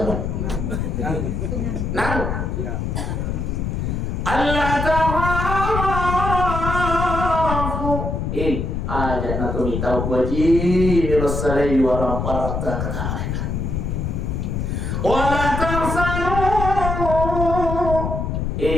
nang Allah tahaku ajak nak minta wajib misalai warang parta kata wala tarsanu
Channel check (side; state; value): left; noise; rumble, 2 dB below the sound